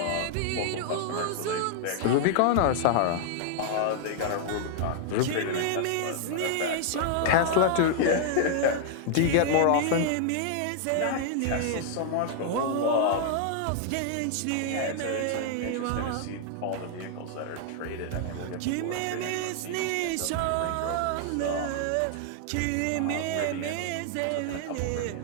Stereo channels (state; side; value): different; both; correlation 0.00